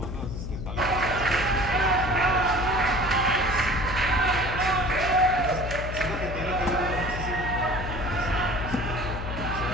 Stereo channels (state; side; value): noise; left; hum, 6 dB below the sound